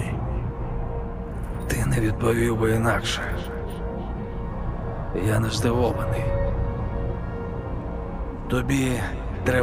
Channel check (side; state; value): both; identical; correlation 1.00